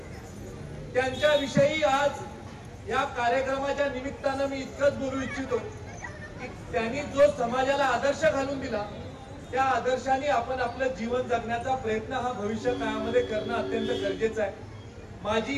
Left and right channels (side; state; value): both; identical; correlation 1.00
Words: त्यांच्याविषयी आज या कार्यक्रमाच्या निमित्तानं मी इतकंच बोलू इच्छितो की त्यांनी जो समाजाला आदर्श घालून दिला त्या आदर्शाने आपण आपलं जीवन जगण्याचा प्रयत्न हा भविष्य काळामध्ये करणं अत्यंत गरजेचं आहे.